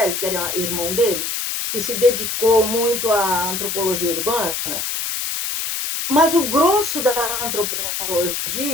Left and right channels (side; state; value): left; noise; hiss, 3 dB below the sound